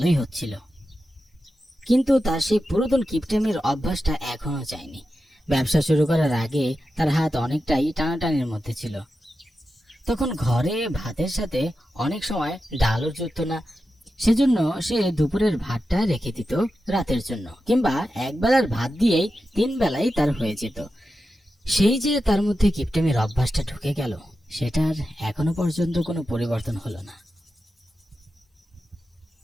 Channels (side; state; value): both; normal; correlation 0.91